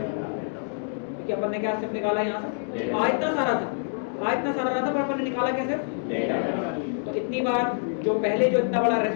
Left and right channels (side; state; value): right; silent; digital silence